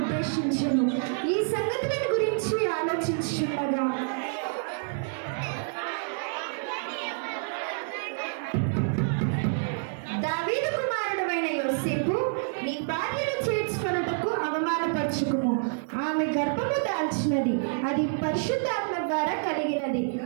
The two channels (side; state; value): left; silent; 59 dB below the other